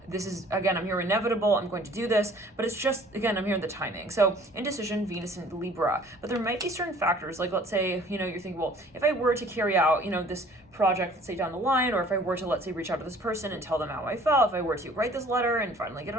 this is, again, I'm hearing inevitable, I'm going to do this, but it's just, again, I'm hearing the timing. So indecision, Venus and Libra, but there might be certain factors, like let's say, you're thinking, well, if I were to carry out, this project, let's say down the line, or if I were to, let's say, reach out to this person and tell them how I felt, if I were to write this letter and finally get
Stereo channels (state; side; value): normal; both; correlation 0.53